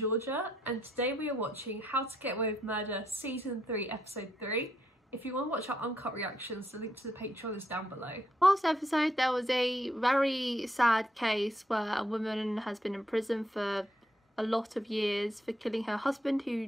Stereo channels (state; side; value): normal; both; correlation 0.76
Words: and today we are watching How to Get Away with Murder Season 3 Episode 3. If you want to watch our uncut reactions, the link to the Patreon is down below. Last episode there was a very sad case where a woman has been in prison for a lot of years for killing her husband